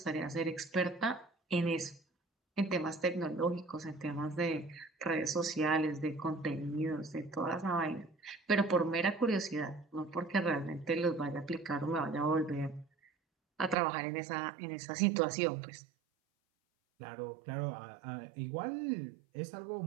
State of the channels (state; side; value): drops out; left; at 13.8 s